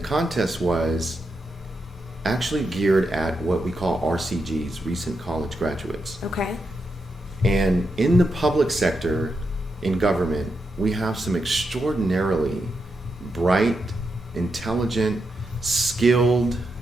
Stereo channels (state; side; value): normal; both; correlation 0.85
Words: was actually geared at what we call RCGs, recent college graduates. Okay. And in the public sector, in government, we have some extraordinarily bright, intelligent, skilled